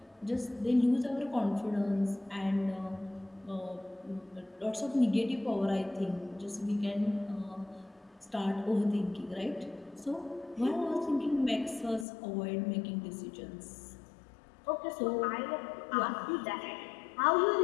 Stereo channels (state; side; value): drops out; right; at 12.1 s